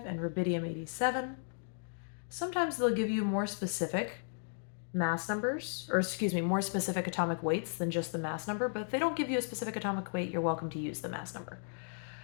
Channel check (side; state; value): right; silent; digital silence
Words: and rubidium 87. Sometimes they'll give you more specific mass numbers, or more specific atomic weights than just the mass number, but if they don't give you a specific atomic weight, you're welcome to use the mass number.